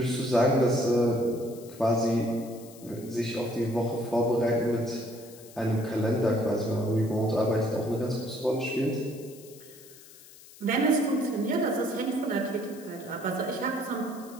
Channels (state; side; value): noise; left; hiss, 21 dB below the sound